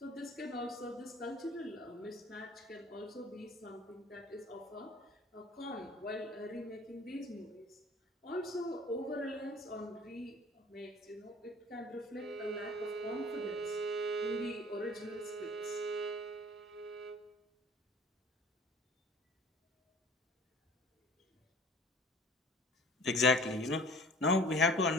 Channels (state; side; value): normal; both; correlation 0.48